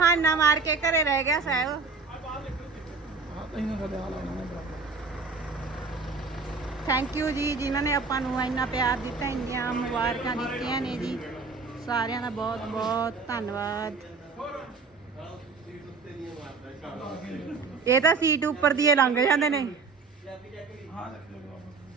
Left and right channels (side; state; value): left; quieter; 4.3 dB